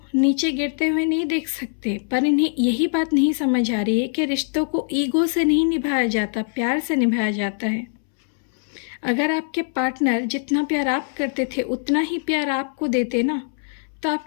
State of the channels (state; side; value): silent; right; 64 dB below the other